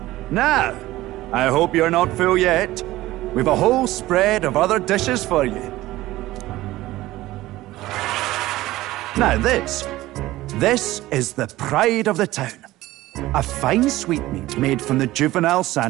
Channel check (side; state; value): left; quieter; 16.9 dB